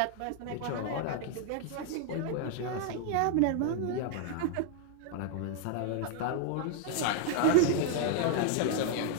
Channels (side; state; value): both; different; correlation 0.00